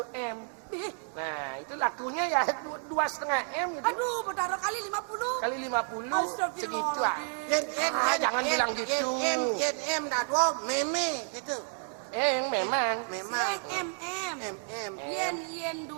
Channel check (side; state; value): left; silent; 57 dB below the other